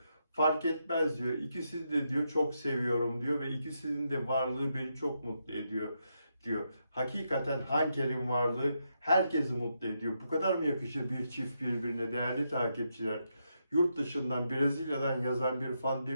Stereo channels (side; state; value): both; inverted; correlation -0.82